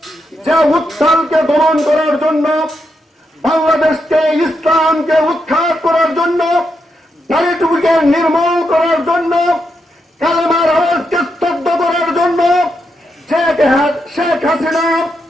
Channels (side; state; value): both; normal; correlation 0.83